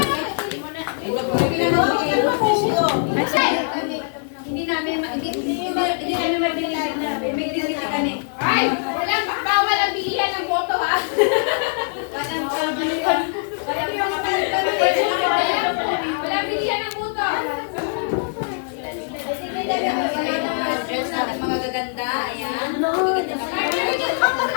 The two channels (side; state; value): right; silent; 63 dB below the other